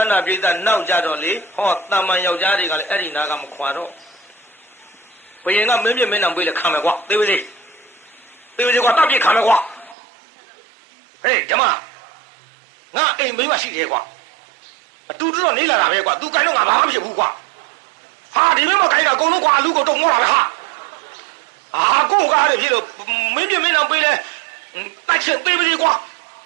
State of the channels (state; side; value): drops out; left; at 10.0 s